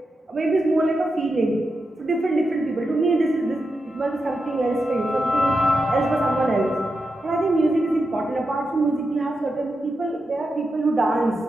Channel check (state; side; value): normal; both; correlation 0.88